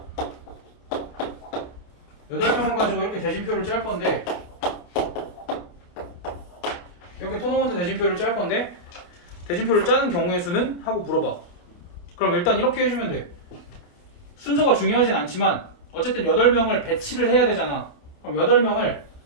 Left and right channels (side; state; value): right; late; 28 ms